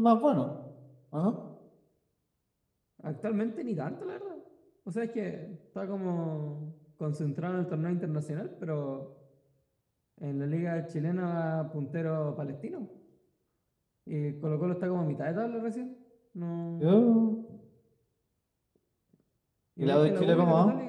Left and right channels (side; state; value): both; identical; correlation 1.00